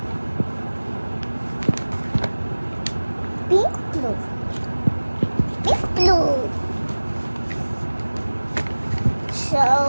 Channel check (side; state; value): both; inverted; correlation -1.00